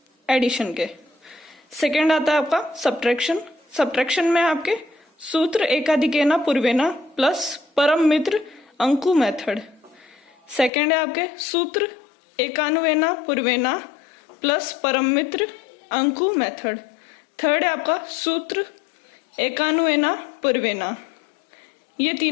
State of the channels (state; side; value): drops out; right; at 10.7 s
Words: एडिशन के। सेकेंड आता है आपका सब्ट्रैक्शन। सब्ट्रैक्शन में आपके सूत्र एकाधिकेना पूर्वेना प्लस परम मित्र अंकु मेथड। सेकेंड है आपके सूत्र एकानुवेना पूर्वेना प्लस परम मित्र अंकु मेथड। थर्ड है आपका सूत्र एकानुवेना पूर्वेना। ये